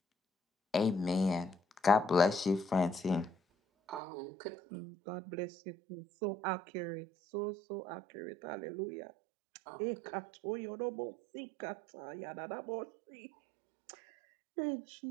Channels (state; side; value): drops out; left; at 4.0 s